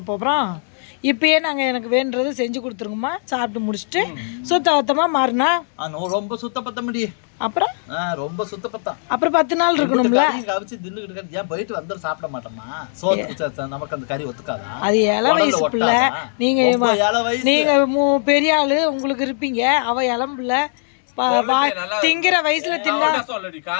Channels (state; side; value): silent; right; digital silence